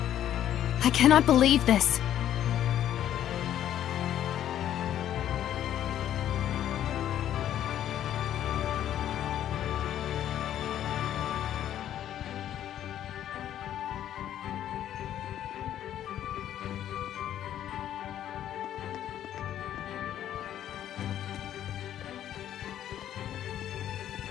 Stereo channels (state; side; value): quieter; right; 11.2 dB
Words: I cannot believe this.